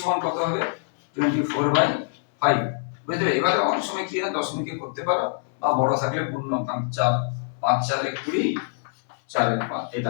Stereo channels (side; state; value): right; silent; 62 dB below the other